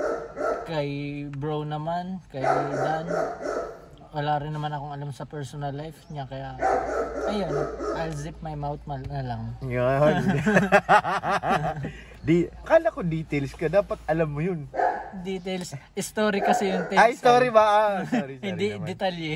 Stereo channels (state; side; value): identical; both; correlation 1.00